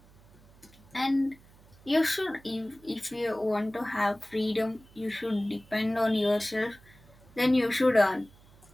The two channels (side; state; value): right; noise; hum, 26 dB below the sound